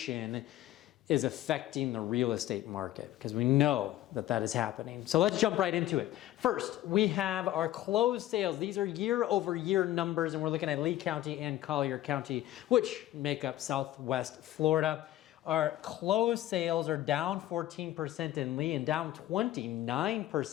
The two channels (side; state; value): right; quieter; 14.1 dB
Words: is affecting the real estate market, because we know that that is happening. So let's jump right into it. First, we have our closed sales. These are year over year numbers, and we're looking at Lee County and Collier County, which make up Southwest Florida. Our closed sales are down 14% in Lee and down